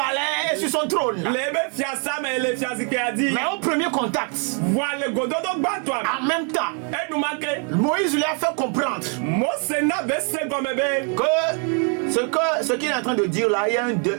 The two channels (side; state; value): left; quieter; 39.3 dB